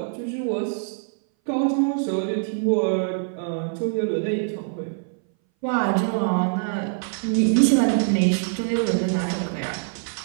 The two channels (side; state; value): left; silent; 60 dB below the other